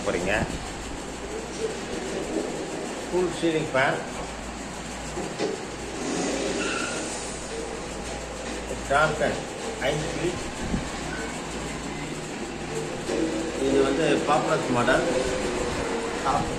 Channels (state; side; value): identical; both; correlation 1.00